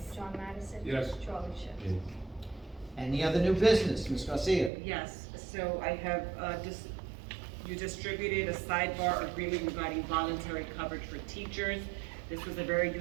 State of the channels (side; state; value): left; drops out; at 4.7 s